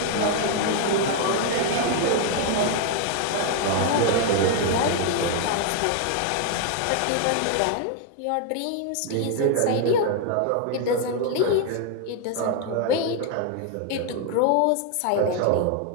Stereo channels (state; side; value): different; both; correlation 0.00